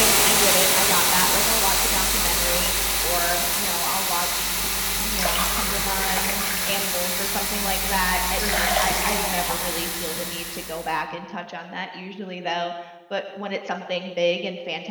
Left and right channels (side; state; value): both; identical; correlation 1.00